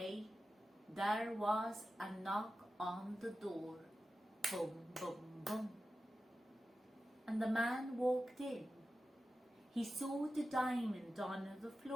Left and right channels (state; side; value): normal; both; correlation 0.93